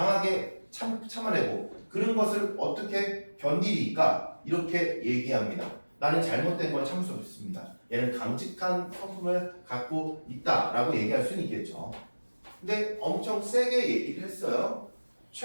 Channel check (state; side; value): inverted; both; correlation -1.00